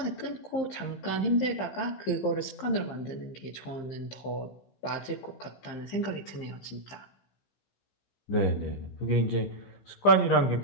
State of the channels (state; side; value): late; right; 15 ms